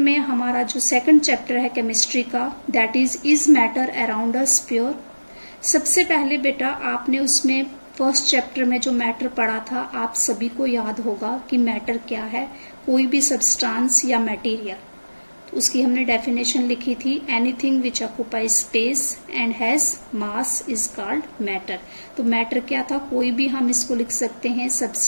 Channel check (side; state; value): both; inverted; correlation -1.00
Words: हमारा जो सेकंड चैप्टर है केमिस्ट्री का that is matter around us pure. सबसे पहले बेटा आपने उसमें फर्स्ट चैप्टर में जो मैटर पढ़ा था आप सभी को याद होगा कि मैटर क्या है, कोई भी सब्सटेंस या मटेरियल। तो उसकी हमने डेफिनेशन लिखी थी, anything which occupies space and has mass is called matter. तो मैटर क्या था, कोई भी हम इसको लिख सकते हैं